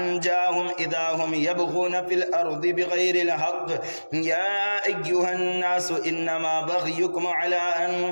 إذا هم يبغون في الأرض بغير الحق يا أيها الناس إنما بغيكم على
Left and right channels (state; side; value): inverted; both; correlation -1.00